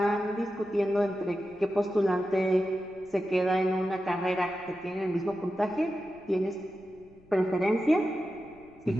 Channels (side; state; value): left; noise; rumble, 27 dB below the sound